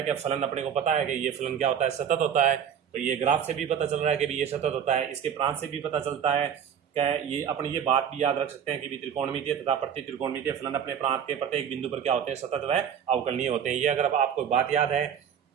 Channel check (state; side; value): quieter; left; 8.4 dB